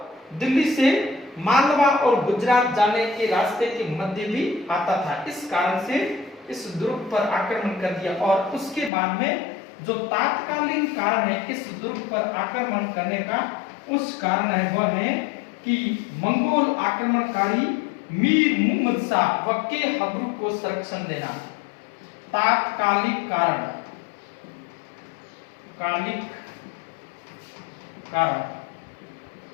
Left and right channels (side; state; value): right; drops out; at 8.9 s